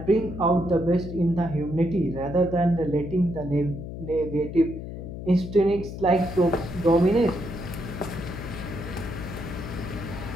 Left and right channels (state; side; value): noise; left; hum, 9 dB below the sound